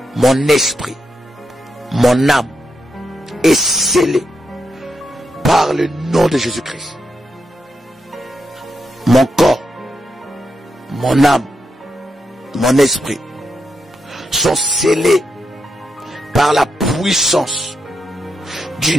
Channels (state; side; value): normal; both; correlation 0.84